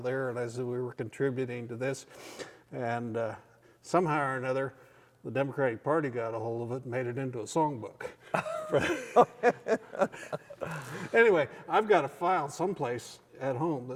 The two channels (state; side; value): identical; both; correlation 1.00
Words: there, and I said we were contributing to this. And somehow or another, the Democratic Party got a hold of it and made it into a songbook. Anyway, I've got a file someplace at home